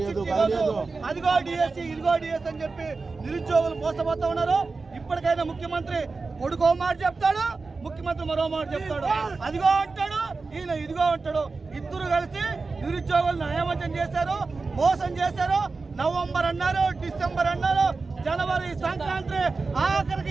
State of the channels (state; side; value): quieter; left; 4.1 dB